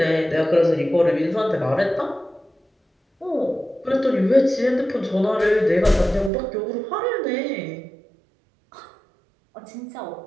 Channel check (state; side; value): drops out; left; at 6.3 s